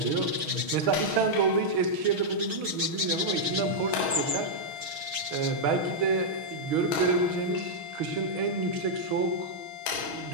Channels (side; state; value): left; late; 6.3 ms